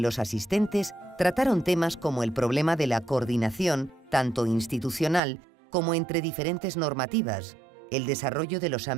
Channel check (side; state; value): left; drops out; at 5.2 s